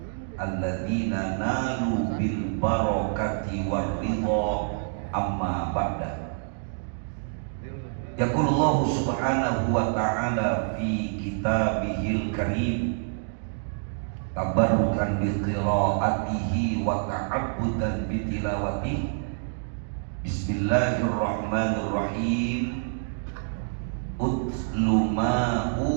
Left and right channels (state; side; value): silent; left; digital silence